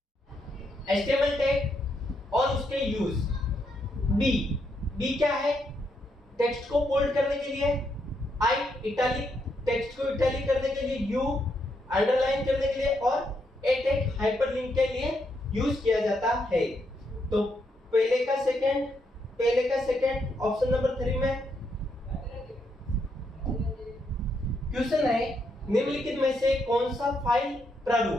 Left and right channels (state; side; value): normal; both; correlation 0.78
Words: HTML tag और उसके यूज। बी क्या है? टेक्स्ट को बोल्ड करने के लिए, आई इटैलिक टेक्स्ट को इटैलिक करने के लिए, यू अंडरलाइन करने के लिए, और ए टैग हाइपरलिंक के लिए यूज किया जाता है। तो पहले का सेकंड ऑप्शन नंबर 3 में। क्वेश्चन है निम्नलिखित में से कौन सा फाइल